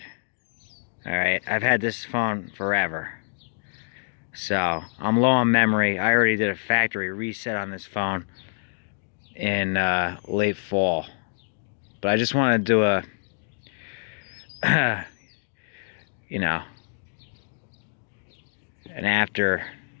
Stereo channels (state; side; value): silent; right; digital silence